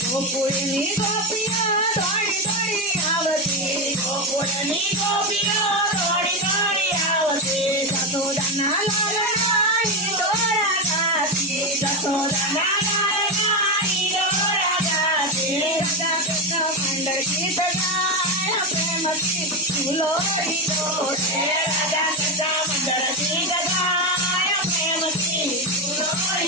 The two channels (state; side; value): normal; both; correlation 0.12